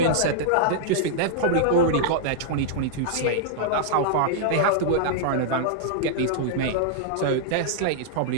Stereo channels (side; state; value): both; different; correlation -0.01